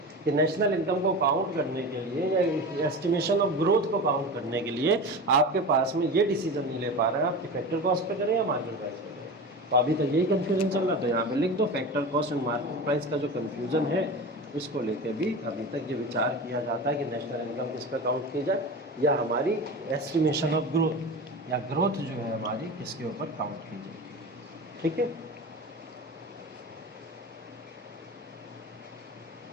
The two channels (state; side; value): normal; both; correlation 0.29